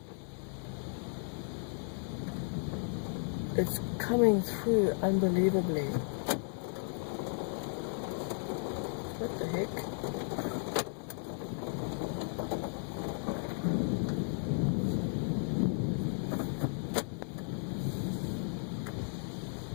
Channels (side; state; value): right; silent; 55 dB below the other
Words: it's coming through unbelievably. What the heck?